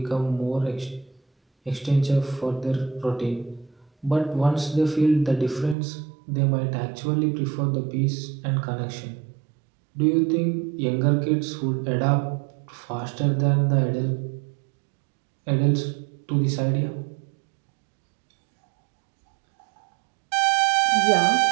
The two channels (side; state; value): left; drops out; at 5.8 s